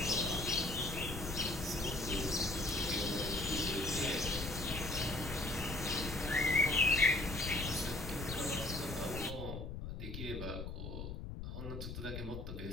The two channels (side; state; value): left; noise; rumble, 7 dB below the sound